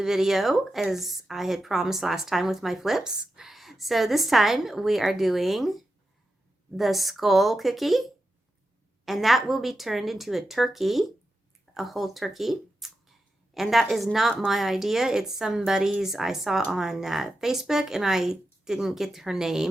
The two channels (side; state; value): both; normal; correlation 0.89